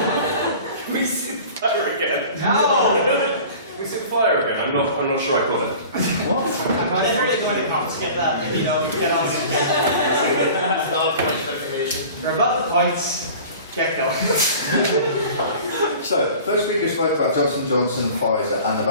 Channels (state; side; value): inverted; both; correlation -0.42